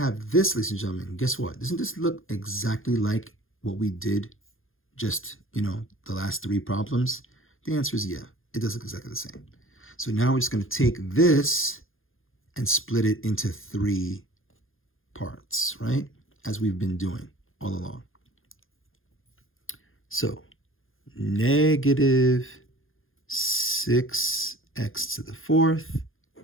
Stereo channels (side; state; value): right; late; 0.60 ms